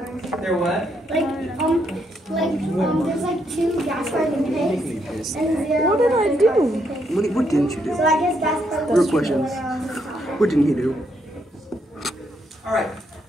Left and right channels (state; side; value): normal; both; correlation 0.76